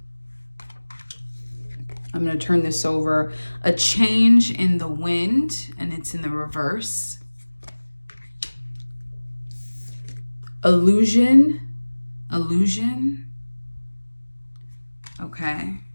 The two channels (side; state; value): both; inverted; correlation -1.00